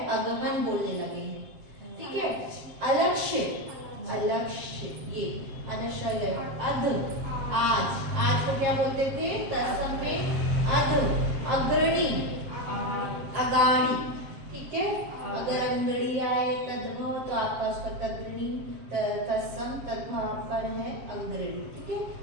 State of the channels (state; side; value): late; left; 7.5 ms